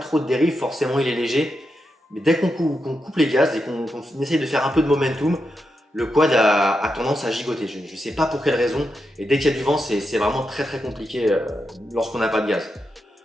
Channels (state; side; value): normal; both; correlation 0.86